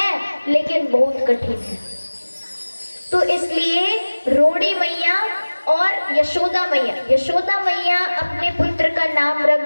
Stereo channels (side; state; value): both; inverted; correlation -1.00